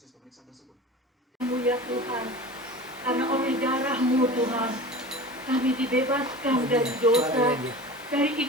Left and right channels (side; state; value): both; normal; correlation 0.35